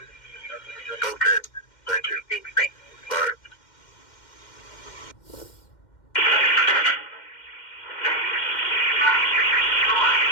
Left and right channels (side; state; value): right; late; 2.1 ms